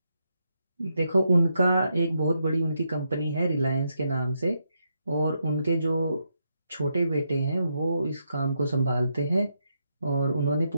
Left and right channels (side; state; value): both; inverted; correlation -0.81